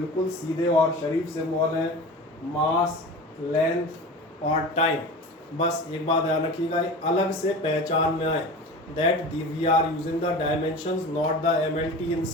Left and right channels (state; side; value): normal; both; correlation 0.33